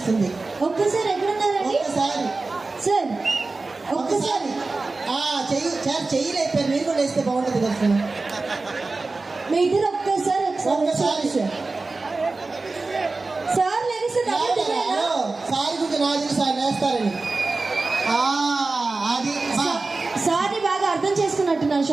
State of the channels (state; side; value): quieter; left; 3.6 dB